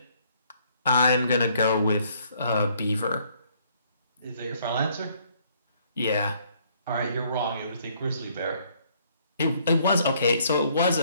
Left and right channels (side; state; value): both; inverted; correlation -0.65